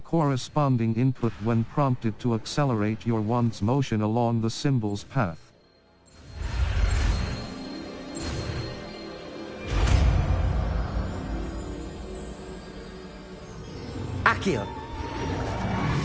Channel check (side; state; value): both; identical; correlation 1.00